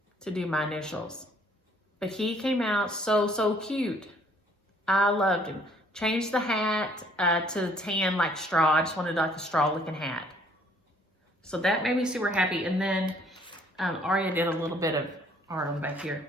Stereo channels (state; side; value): normal; both; correlation 0.61